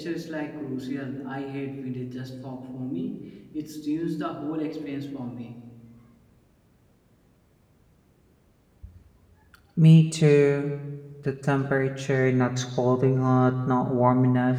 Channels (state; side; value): identical; both; correlation 1.00